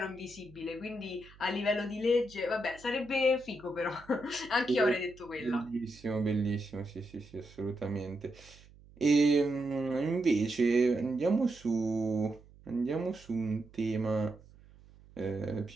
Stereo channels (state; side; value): noise; right; hum, 24 dB below the sound